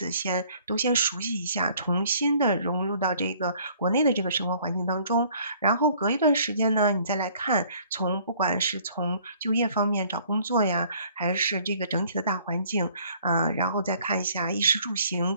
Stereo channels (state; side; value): inverted; both; correlation -0.58